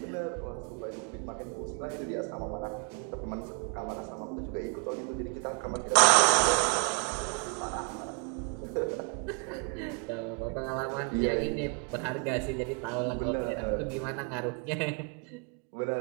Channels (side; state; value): left; quieter; 37.7 dB